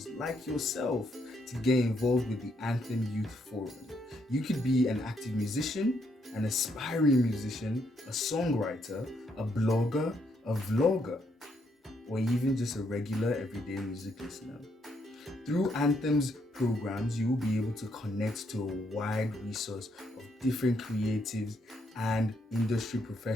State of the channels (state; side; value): normal; both; correlation 0.75